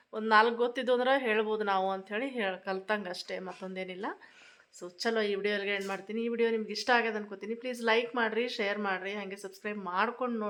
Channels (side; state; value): both; identical; correlation 1.00